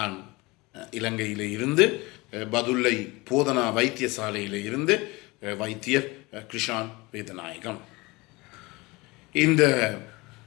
இலங்கையிலே இருந்து பதுளை போதனா வைத்தியசாலையிலே இருந்து வைத்தியர் கிருஷான் வேதநாயகம். இந்த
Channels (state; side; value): quieter; right; 23.4 dB